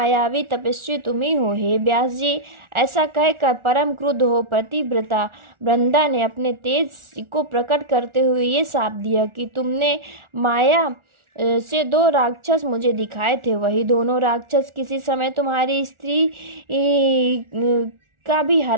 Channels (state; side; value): late; left; 1.4 ms